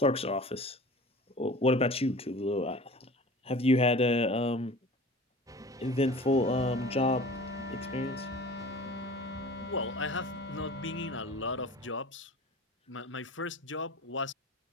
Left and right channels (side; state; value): both; normal; correlation 0.41